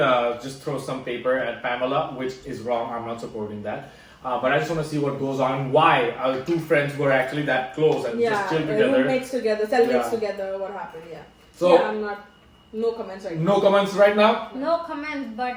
just throws some paper at Pamela, which is wrong. I'm not supporting that. But I just want to see what goes on. Why our two friends were actually that close and just chill together. Roommates together, cellmates together. What happened? Yeah. So I'm not. No comments right now. No comments right now? No comments,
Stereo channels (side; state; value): both; identical; correlation 1.00